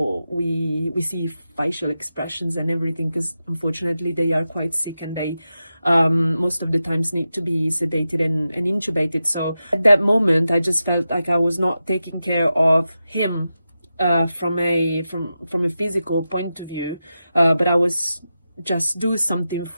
we see facial expressions and everything, because unfortunately they are quite sick, and they most of the times need to be sedated and intubated. So at that moment, I just felt like I was not taking care of him from a physical point of view, but I was just do something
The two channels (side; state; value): both; inverted; correlation -0.91